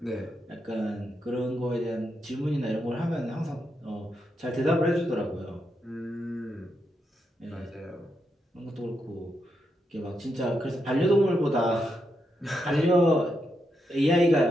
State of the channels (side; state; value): both; normal; correlation 0.83